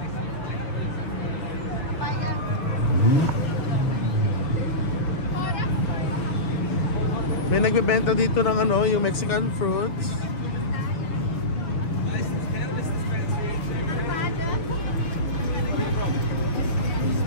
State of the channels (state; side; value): late; right; 6.5 ms